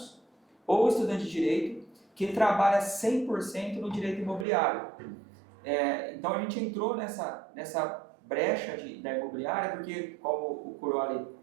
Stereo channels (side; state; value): left; drops out; at 4.5 s